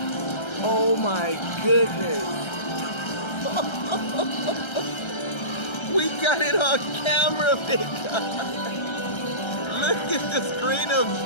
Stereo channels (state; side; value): late; right; 1.3 ms